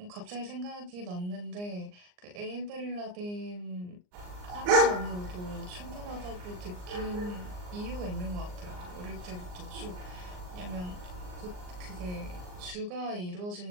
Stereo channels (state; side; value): late; left; 39 ms